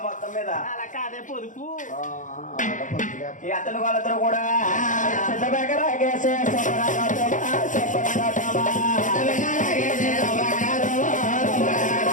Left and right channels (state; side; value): late; right; 0.37 ms